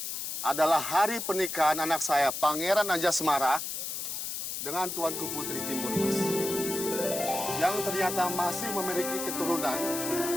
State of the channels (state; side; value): noise; left; hiss, 4 dB below the sound